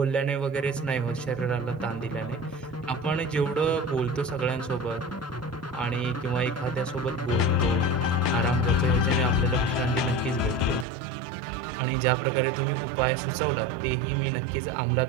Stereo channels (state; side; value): drops out; left; at 10.9 s